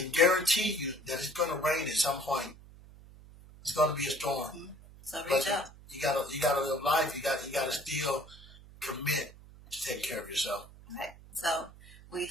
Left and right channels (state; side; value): noise; right; hum, 20 dB below the sound